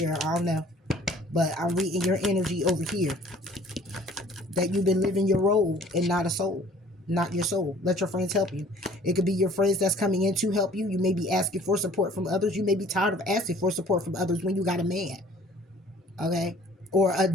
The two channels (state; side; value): normal; both; correlation 0.53